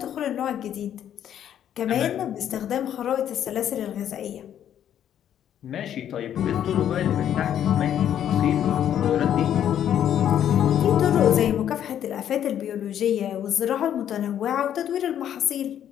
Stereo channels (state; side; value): quieter; right; 10.2 dB